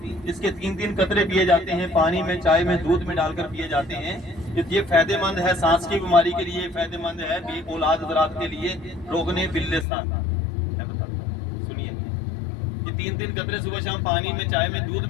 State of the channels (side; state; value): right; drops out; at 9.9 s